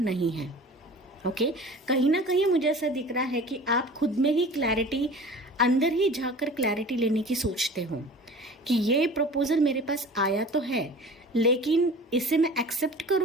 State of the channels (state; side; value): normal; both; correlation 0.41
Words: है। ओके, कहीं ना कहीं मुझे ऐसा दिख रहा है कि आप खुद में ही क्लैरिटी, अंदर ही जाकर क्लैरिटी लेने की सोचते हो कि ये प्रपोजल मेरे पास आया तो है, लेकिन इसे मैं एक्सेप्ट